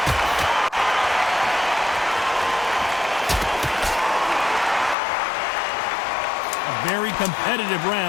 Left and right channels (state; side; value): drops out; right; at 5.0 s